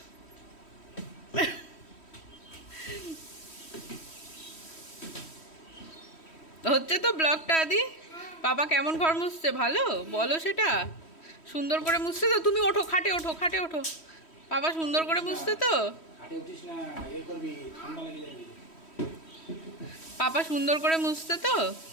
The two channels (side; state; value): right; late; 3.1 ms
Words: হচ্ছে তো ব্লগটা। আদি পাপা কেমন ঘর মুছছে ভালো বলো, সেটা সুন্দর করে মুছছে তো? তুমি ওঠো, খাটে ওঠো, খাটে ওঠো। পাপা সুন্দর করে মুছছে তো? পাপা সুন্দর করে মুছছে তো?